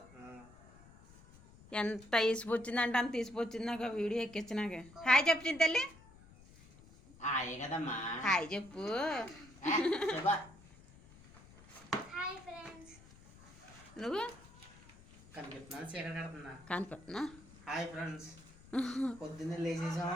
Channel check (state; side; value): noise; left; rumble, 22 dB below the sound